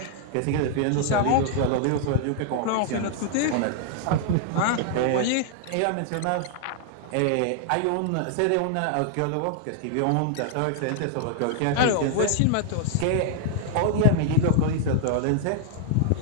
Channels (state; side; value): different; both; correlation 0.00